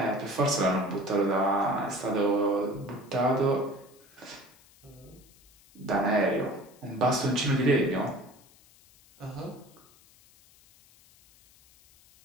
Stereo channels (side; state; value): left; noise; hiss, 27 dB below the sound